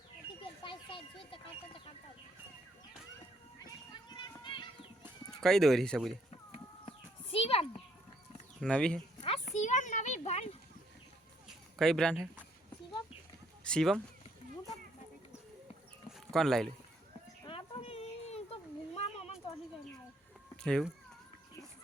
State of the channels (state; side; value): normal; both; correlation 0.68